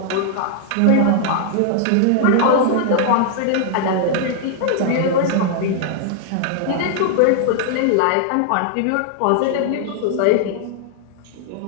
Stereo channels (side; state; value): both; different; correlation -0.01